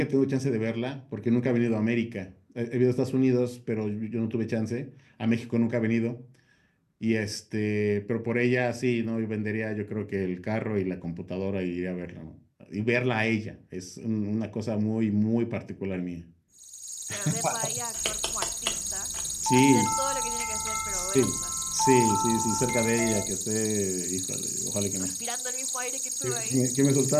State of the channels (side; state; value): both; identical; correlation 1.00